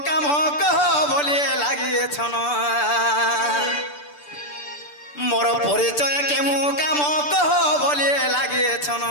काम कह बोले লাগিয়েছন मोर परिचय केउ काम कह बोले লাগিয়েছন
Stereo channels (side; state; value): right; late; 6.8 ms